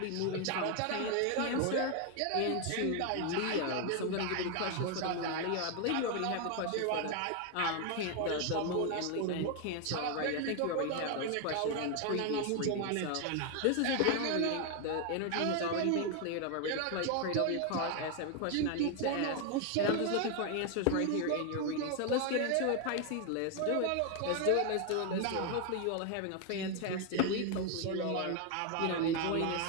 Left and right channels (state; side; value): different; both; correlation 0.01